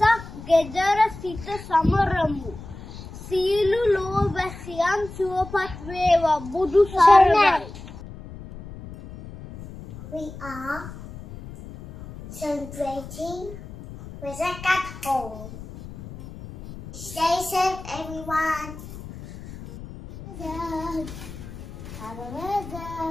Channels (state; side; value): noise; left; rumble, 14 dB below the sound